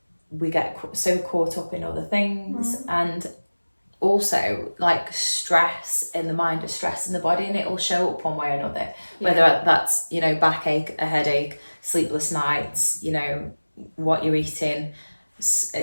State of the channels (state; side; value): inverted; both; correlation -1.00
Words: we get so caught up in other things, and also like stress in the mind is stress in the body, and it will show up one way or another, whether that's, you know, backache, a headache, sleepless nights, you know, what you're eating,